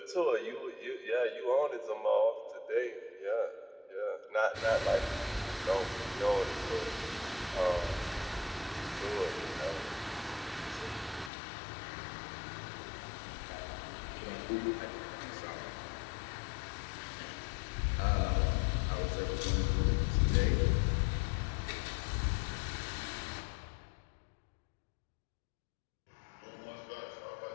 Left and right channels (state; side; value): drops out; right; at 11.3 s